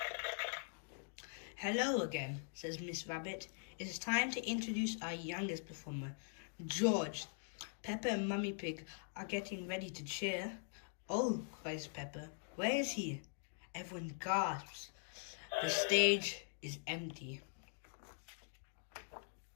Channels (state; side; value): silent; right; digital silence